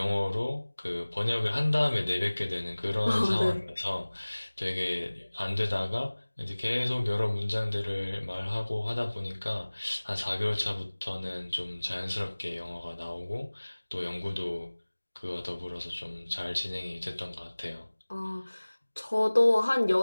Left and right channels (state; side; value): inverted; both; correlation -1.00